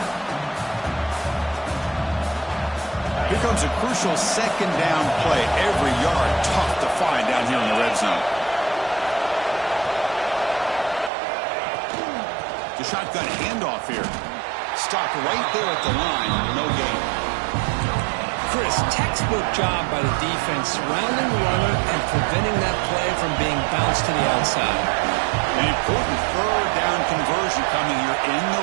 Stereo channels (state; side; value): drops out; left; at 11.1 s